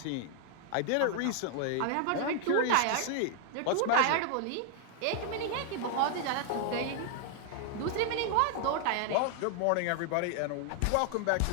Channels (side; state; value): both; different; correlation 0.00